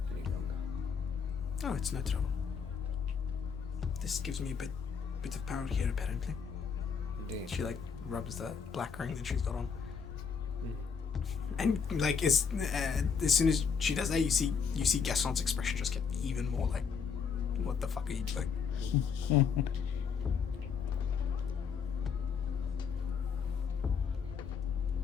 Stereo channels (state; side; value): quieter; right; 6.2 dB